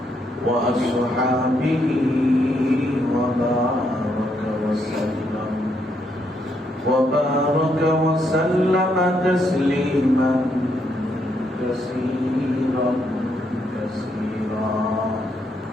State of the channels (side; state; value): both; normal; correlation 0.76